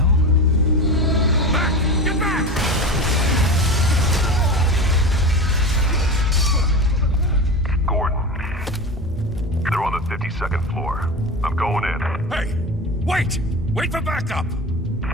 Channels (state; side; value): normal; both; correlation 0.27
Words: Second floor. I'm going in. Hey! Wait! Wait for backup!